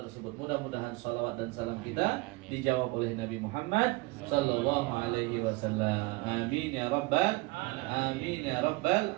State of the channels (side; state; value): left; quieter; 23.3 dB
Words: Mudah-mudahan salawat dan salam kita dijawab oleh Nabi Muhammad sallallahu alaihi wasallam. Amin ya rabbal